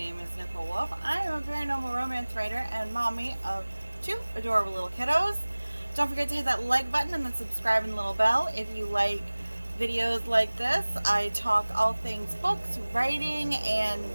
is Nicole Wolf. I am a paranormal romance writer and mommy of two adorable little kiddos. Don't forget to hit that like button and then subscribe and the little bell if you like videos like this. I talk all things books, writing,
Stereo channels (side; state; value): both; inverted; correlation -1.00